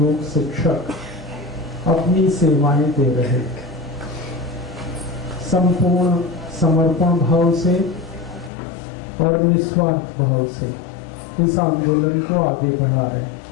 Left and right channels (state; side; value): drops out; right; at 8.5 s